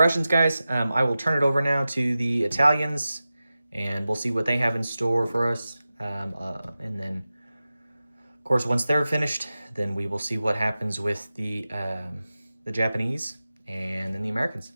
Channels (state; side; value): inverted; both; correlation -0.95